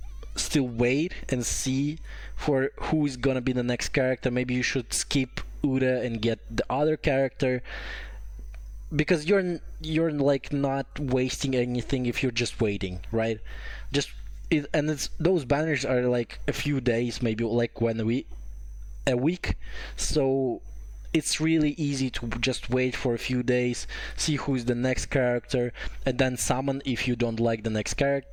still wait and see for who is gonna be the next character. Maybe you should skip Ura and get the other character, because you're like not wasting anything if you're just waiting, right? And it's those banners are like a few days, maybe like a week, so it's really easy to just wait for a few days, see who's the next character, and then summon if you don't like the next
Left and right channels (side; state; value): both; identical; correlation 1.00